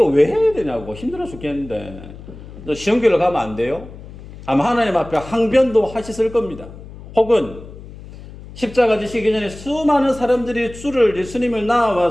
왜 해야 되냐고 힘들어 죽겠는데 쉬운 길로 가면 안 돼요? 아마 하나님 앞에 항변도 하셨을 겁니다. 혹은 십자가 지시기 전에 수많은 사람들이 주를 예수님을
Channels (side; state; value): left; noise; hum, 16 dB below the sound